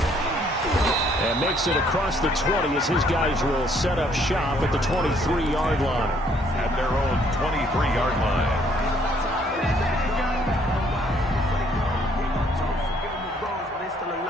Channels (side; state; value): both; normal; correlation 0.65